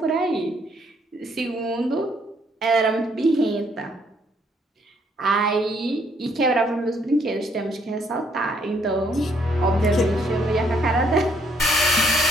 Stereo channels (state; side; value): normal; both; correlation 0.67